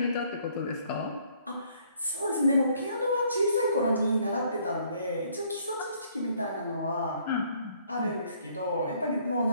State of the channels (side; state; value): both; inverted; correlation -0.64